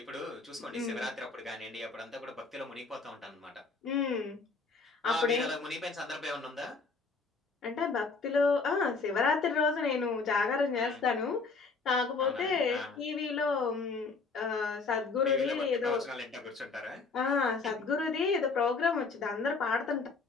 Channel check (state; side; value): quieter; right; 4.3 dB